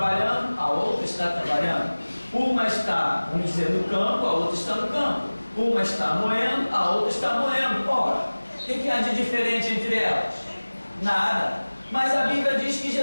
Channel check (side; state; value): both; inverted; correlation -1.00